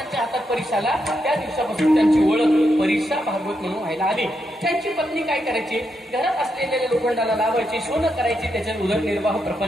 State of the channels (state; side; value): normal; both; correlation 0.82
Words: हातात परीस आला त्या दिवसापासून त्यांची ओळख परीसा भागवत म्हणून व्हायला आली. त्यांची पत्नी काय करायची, घरात असलेल्या लोखंडाला लावायची, सोनं करायची, त्याच्यात उदरनिर्वाह